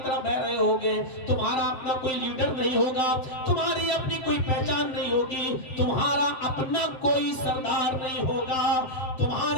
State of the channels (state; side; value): late; right; 7.7 ms